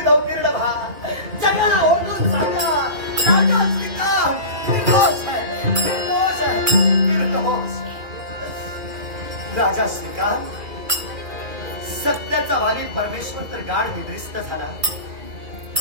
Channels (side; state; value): left; late; 2.4 ms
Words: नवतीर्ण भा. जगाला ओढून सांगा, राजा श्रीकांत निर्दोष आहे, निर्दोष आहे, निर्दोष. राजा श्रीकांत, सत्याचा वाली परमेश्वर तर गाढ निद्रिस्त झाला.